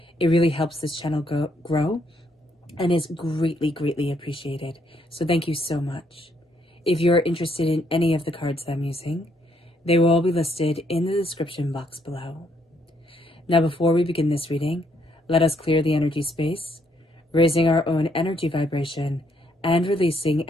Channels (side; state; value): both; normal; correlation 0.72